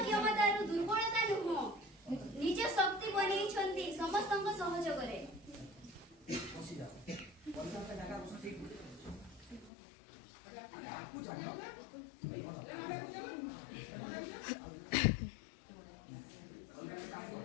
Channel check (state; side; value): drops out; right; at 9.7 s